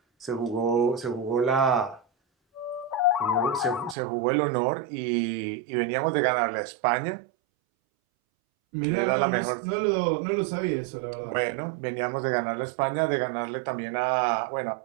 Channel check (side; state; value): left; drops out; at 4.0 s